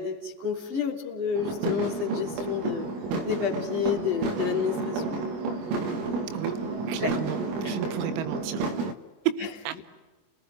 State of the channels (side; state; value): left; late; 25 ms